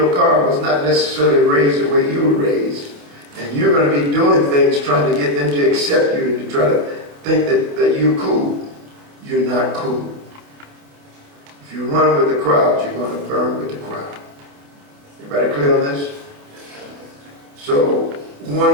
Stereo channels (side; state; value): left; late; 28 ms